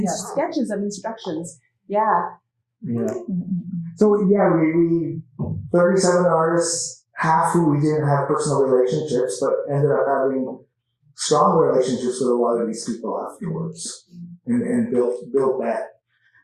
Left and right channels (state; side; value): identical; both; correlation 1.00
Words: sketches of instructions. Yeah. Yeah. So we 37 artists, half who we didn't have personal relationships, but ended up having strong relationships with a lot of these people afterwards, and built that.